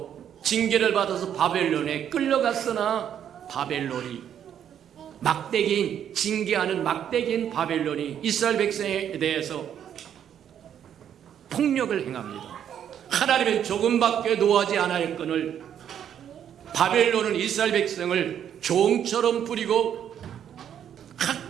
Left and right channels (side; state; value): left; quieter; 9.4 dB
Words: 징계를 받아서 바벨론에 끌려갔으나 바벨론이 막대기인 징계하는 막대기인 바벨론이 이스라엘 백성에 대해서 폭력을 행합니다. 하나님은 조금밖에 노하지 않았거늘 바벨론은 이스라엘 백성을 종처럼 부리고